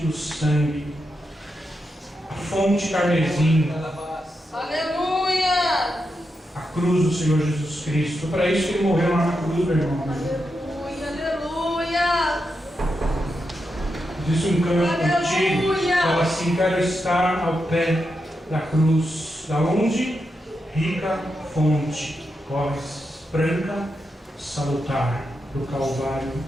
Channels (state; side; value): normal; both; correlation 0.86